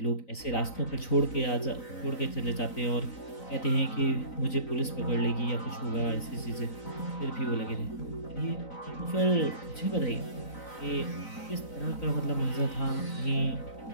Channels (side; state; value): right; late; 3.9 ms